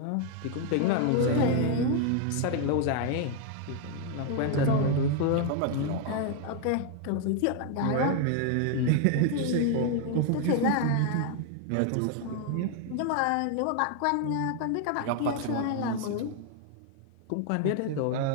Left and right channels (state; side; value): different; both; correlation 0.00